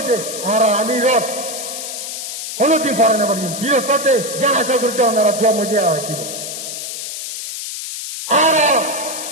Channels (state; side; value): noise; left; hiss, 7 dB below the sound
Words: আর আমির হলো দিন পারে না পারি দিনের সাথে জ্ঞান আশা করতে ওনারা দোয়া মধ্যে কি আর